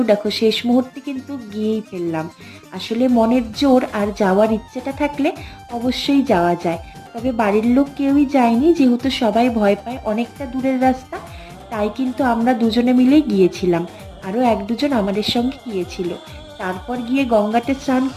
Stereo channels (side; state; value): both; identical; correlation 1.00